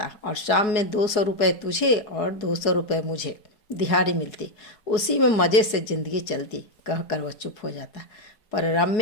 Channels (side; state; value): right; late; 4.7 ms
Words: और शाम में 200 रुपये तुझे और 200 रुपये मुझे दिहाड़ी मिलती। उसी में मज़े से ज़िंदगी चलती, कहकर वह चुप हो जाता। पर